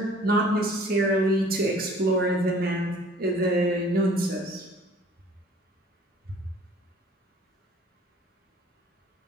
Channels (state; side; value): normal; both; correlation 0.52